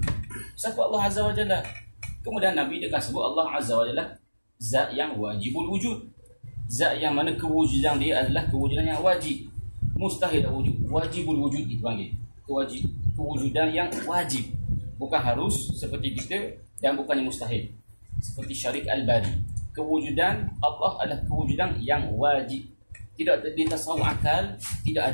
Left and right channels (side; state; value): both; inverted; correlation -1.00